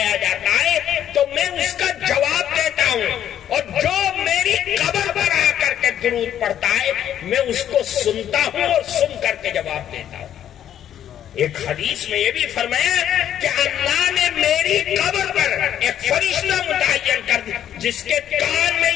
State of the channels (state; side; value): quieter; right; 10.5 dB